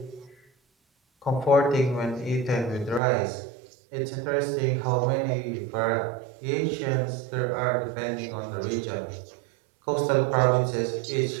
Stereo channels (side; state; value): left; drops out; at 3.0 s